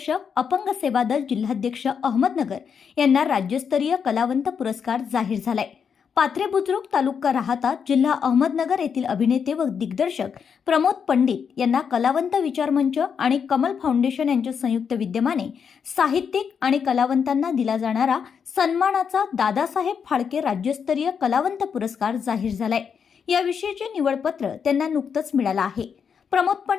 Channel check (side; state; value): right; quieter; 6.8 dB